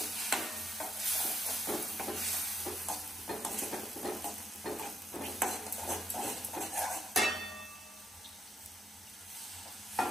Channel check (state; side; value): normal; both; correlation 0.78